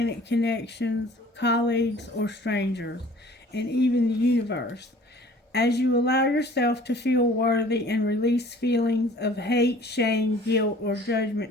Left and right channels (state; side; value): normal; both; correlation 0.50